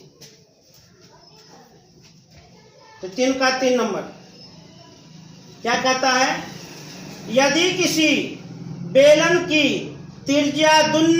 तो 3 का 3 नंबर क्या कहता है? यदि किसी बेलन की त्रिज्या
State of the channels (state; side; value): identical; both; correlation 1.00